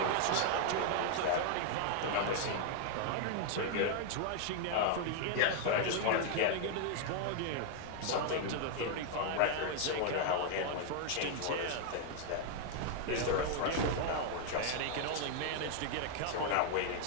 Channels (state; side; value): different; both; correlation 0.00